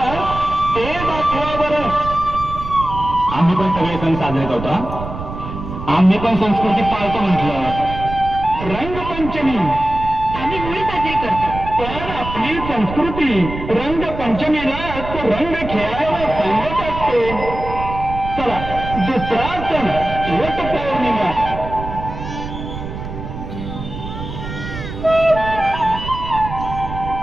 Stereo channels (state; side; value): noise; right; rumble, 9 dB below the sound